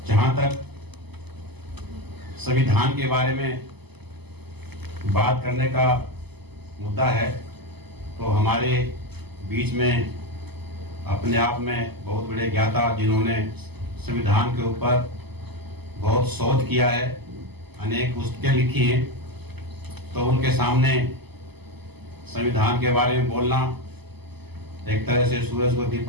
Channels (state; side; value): late; left; 0.99 ms